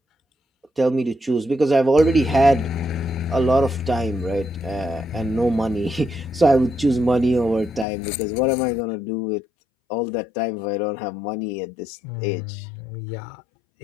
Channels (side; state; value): right; drops out; at 7.9 s